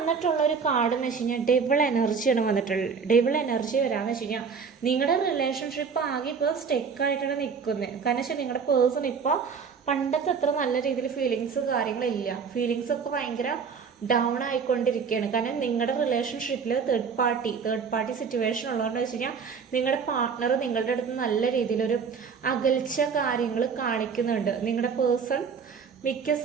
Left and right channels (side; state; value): left; quieter; 5.9 dB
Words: ഒരു കാർഡ് എന്ന് വെച്ച് കഴിഞ്ഞാൽ ഡെവിൾ എനർജിയാണ് വന്നിട്ടുള്ളത്. ഡെവിൾ എനർജി വരാമെന്ന് വെച്ച് കഴിഞ്ഞാൽ നിങ്ങളുടെ റിലേഷൻഷിപ്പ് ആകെ ഇപ്പോൾ സ്റ്റെക്കായിട്ടാണ് നിൽക്കുന്നത്. കാരണം വെച്ചാൽ നിങ്ങളുടെ പേഴ്സൺ ഇപ്പോൾ പണ്ടത്തെ അത്ര നല്ല രീതിയിൽ ഫീലിങ്സ് കാര്യങ്ങളില്ല. ഫീലിങ്സ് ഒക്കെ ഭയങ്കര ഡൗൺ ആയിക്കൊണ്ടിരിക്കുകയാണ്. കാരണം നിങ്ങളുടെ റിലേഷൻഷിപ്പിൽ തേർഡ് പാർട്ടി സിറ്റുവേഷൻ ഉള്ളതുകൊണ്ട് വെച്ച് കഴിഞ്ഞാൽ നിങ്ങളുടെ പാർട്ട്ണർ നിങ്ങളുടെ അടുത്ത് നല്ല രീതിയിലൊരു അകൽച്ച കാര്യങ്ങൾ കാണിക്കുന്നുണ്ട്. നിങ്ങളുടെ പേഴ്സൺ മിക്ക